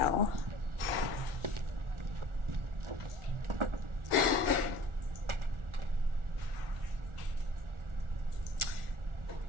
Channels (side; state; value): left; late; 1.5 ms